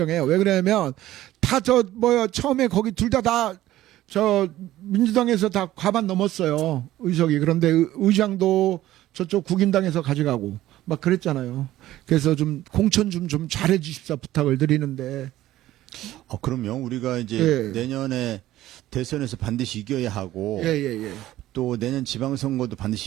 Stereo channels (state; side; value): quieter; left; 14.7 dB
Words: 왜 그러냐면, 처음에 거기 둘 다 민주당에서 다 과반 넘었어요. 의석이. 그런데 의장도 저쪽 국민당에서 가져가고, 막 그랬잖아요. 그래서 좀 공천 좀 잘해 주십사 부탁을 드리는데. 그럼요. 우리가 이제 예. 내년에 대선에서 반드시 이겨야 하고, 예. 또 내년 지방선거도